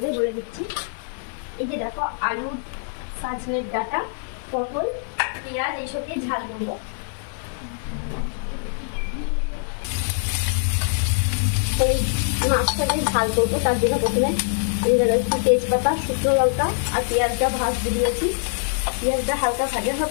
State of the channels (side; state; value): right; silent; 58 dB below the other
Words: বলে দিচ্ছি। এই যে দেখো আলু, সজনের ডাঁটা, পটল, পেঁয়াজ এইসব দিয়ে ঝাল করবো। এই মাছটা দিয়ে ঝাল করবো, তার জন্য প্রথমে আমি একটু তেজপাতা, শুকনো লঙ্কা আর পেঁয়াজটা ভাজতে দিয়েছি। পেঁয়াজটা হালকা ভাজা